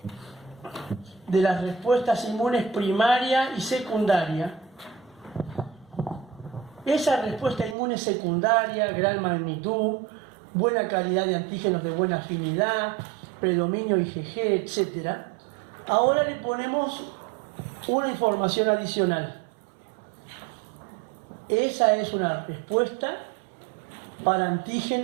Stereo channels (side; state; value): left; drops out; at 7.8 s